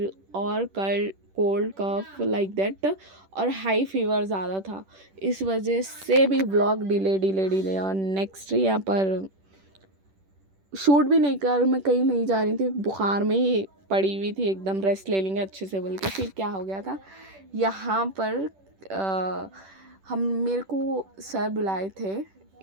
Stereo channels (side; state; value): left; late; 10 ms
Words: और कोल्ड कफ लाइक दैट, और हाई फीवर ज़्यादा था। इस वजह से भी व्लॉग डिले और नेक्स्ट यहाँ पर शूट भी नहीं कर, मैं कहीं नहीं जा रही थी, बुखार में ही पड़ी हुई थी, एकदम रेस्ट ले लेंगे अच्छे से बोल के। फिर क्या हो गया था यहाँ पर, हम मेरे को सर बुलाए थे